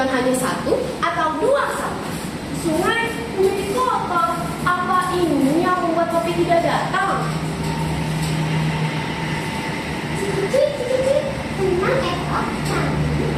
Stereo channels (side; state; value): both; identical; correlation 1.00